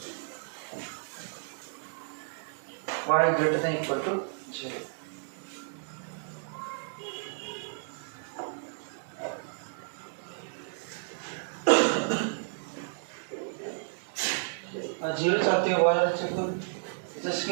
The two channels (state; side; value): silent; left; digital silence